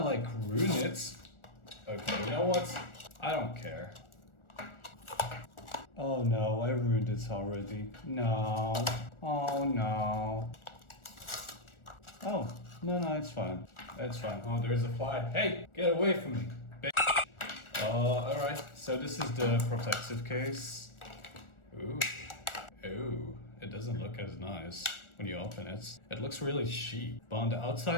like ruin it. Okay, you know what? I don't care. Oh no, I ruined it already. No. Oh no. Oh, no, it's fine. It's fine. Oh, there's a fly. Hey, get away from me, bitch. Alright. So this is the protective case. Ooh. Ooh. It doesn't look as nice when you open it. It looks really cheap. But on the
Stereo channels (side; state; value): right; late; 1.4 ms